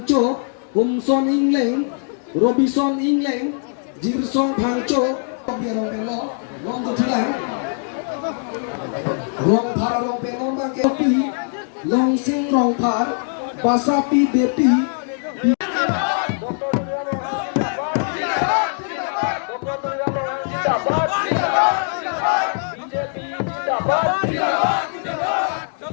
Humson Ingleng, Robinson Ingleng, Jirsong Pangcho, Biarong Penlo, Long Tilang, Rong Paralong Penong Bangkepi, Long Sing Rong Par, Basapi Bepi.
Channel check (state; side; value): silent; right; 57 dB below the other